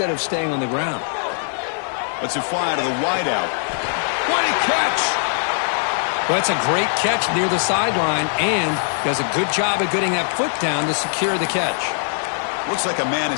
of staying on the ground. Let's it fly to the wideout. What a catch! Well, that's a great catch near the sideline, and does a good job of getting that foot down to secure the catch. Looks like a man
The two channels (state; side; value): silent; right; 56 dB below the other